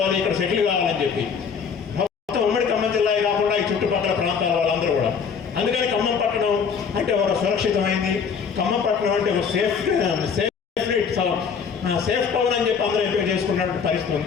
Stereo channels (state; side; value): quieter; right; 6.3 dB